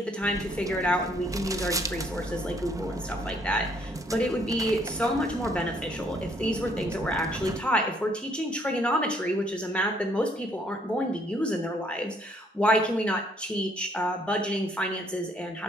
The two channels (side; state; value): both; normal; correlation 0.66